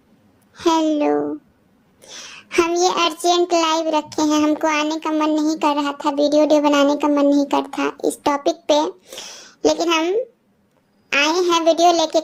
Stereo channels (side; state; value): both; identical; correlation 1.00